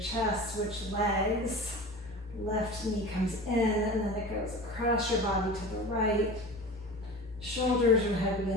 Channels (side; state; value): both; normal; correlation 0.34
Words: switch legs. Left knee comes in and then it goes across your body to the right. Shoulders are heavy